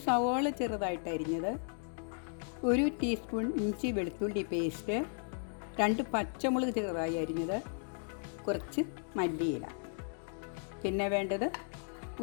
സവോള ചെറുതായിട്ട് അരിഞ്ഞത്, 1 ടീസ്പൂൺ ഇഞ്ചി വെളുത്തുള്ളി പേസ്റ്റ്, 2 പച്ചമുളക് ചെറുതായി അരിഞ്ഞത്, കുറച്ച് മല്ലിയില, പിന്നെ വേണ്ടത്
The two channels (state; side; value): silent; right; 54 dB below the other